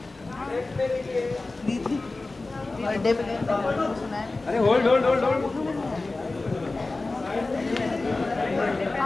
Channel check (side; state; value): right; quieter; 3.3 dB